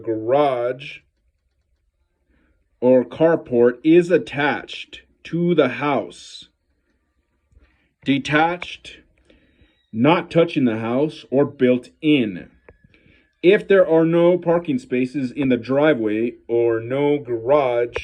garage or carport is attached to the house, detached, not touching the house, or built in. If there are no parking spaces in the driveway or no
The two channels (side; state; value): both; identical; correlation 1.00